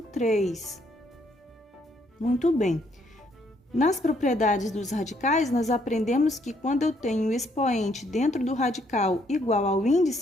3. Muito bem. Nas propriedades dos radicais, nós aprendemos que quando eu tenho o expoente dentro do radical igual ao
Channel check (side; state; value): both; normal; correlation 0.70